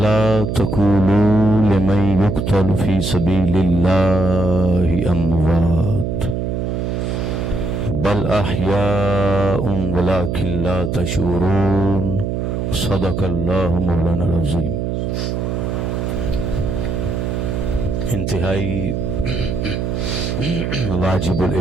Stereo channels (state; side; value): noise; right; hum, 1 dB below the sound